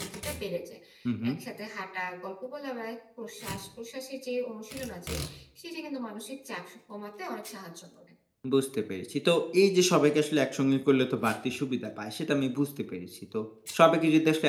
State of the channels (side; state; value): both; identical; correlation 1.00